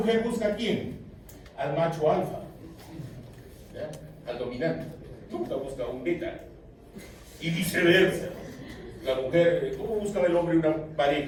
busca a quién? Al macho alfa, ¿ya? Al dominante. Nunca busca a un beta. Y viceversa. La mujer, ¿cómo buscaba el hombre una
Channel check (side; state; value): both; identical; correlation 1.00